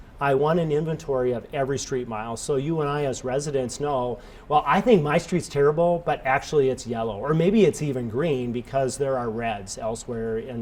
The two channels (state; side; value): identical; both; correlation 1.00